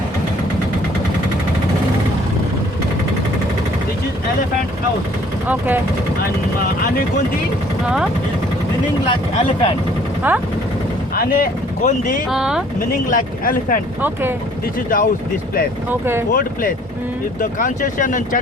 This is elephant house Okay. and Anegundi Huh? is meaning like elephant. Huh? Gondi, Uh-huh. meaning like elephant. Okay. This is the house, this place. Okay. Old place. Mm. If the concession and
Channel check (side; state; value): both; normal; correlation 0.57